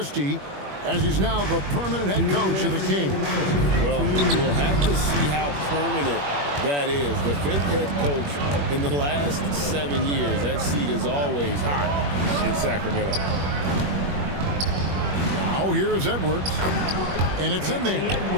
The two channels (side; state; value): left; late; 21 ms